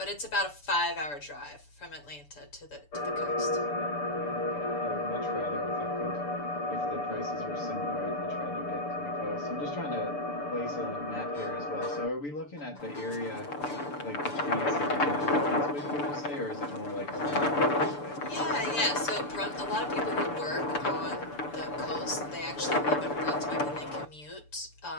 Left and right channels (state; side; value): late; right; 6.9 ms